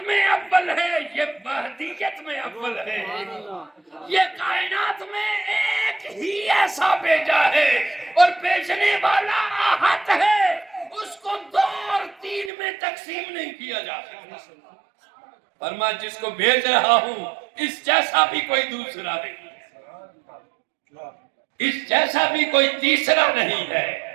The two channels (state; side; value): drops out; left; at 12.5 s